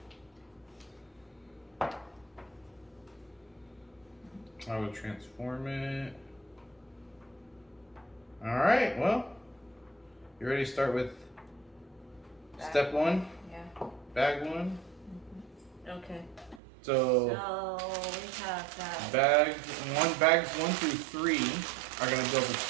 I would transform it. Alright, well, you ready to start with step one? Yeah. Bag one? Okay. So we have that. Bags 1 through 3 are going to build the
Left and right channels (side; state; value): left; drops out; at 16.6 s